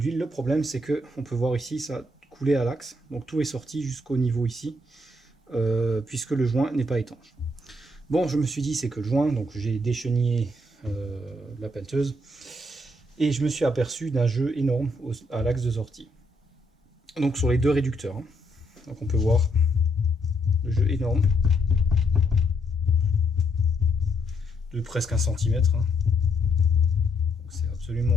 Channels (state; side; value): normal; both; correlation 0.74